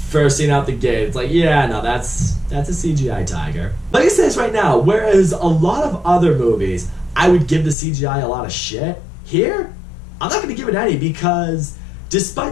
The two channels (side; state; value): right; drops out; at 7.8 s